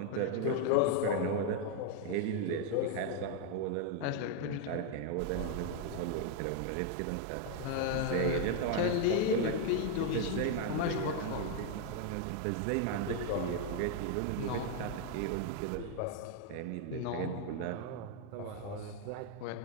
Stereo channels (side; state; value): both; different; correlation 0.00